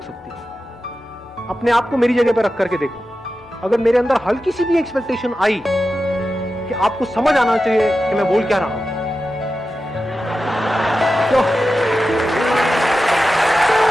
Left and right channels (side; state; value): both; normal; correlation 0.92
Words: सकती। अपने आप को मेरी जगह पे रख करके देखो, अगर मेरे अंदर हल्की सी भी एक्सपेक्टेशन आई कि आपको समझ आना चाहिए कि मैं बोल क्या रहा हूं,